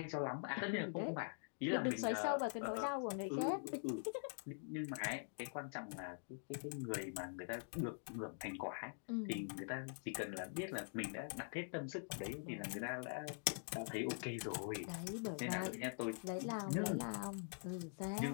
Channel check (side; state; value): right; silent; digital silence